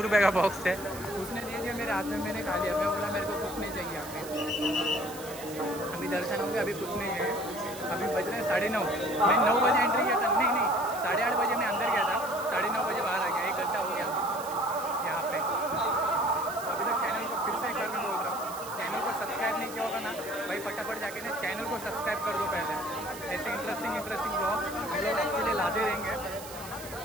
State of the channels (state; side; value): noise; right; hiss, 14 dB below the sound